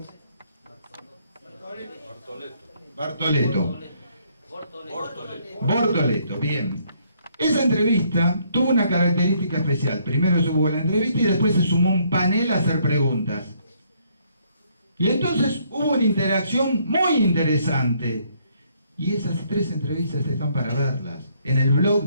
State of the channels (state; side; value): inverted; both; correlation -0.68